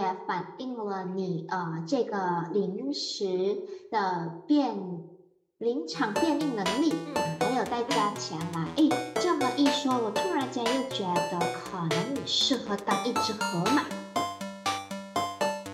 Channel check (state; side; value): identical; both; correlation 1.00